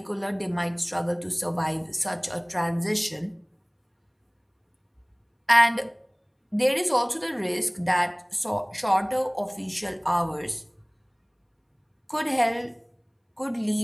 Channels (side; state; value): both; identical; correlation 1.00